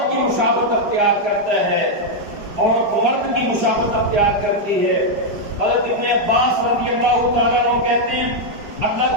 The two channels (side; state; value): left; late; 4.9 ms